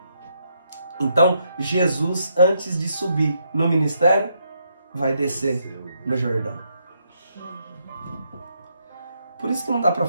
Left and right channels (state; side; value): inverted; both; correlation -0.77